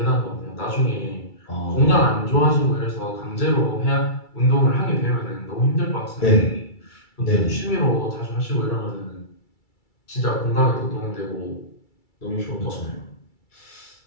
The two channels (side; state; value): right; late; 2.3 ms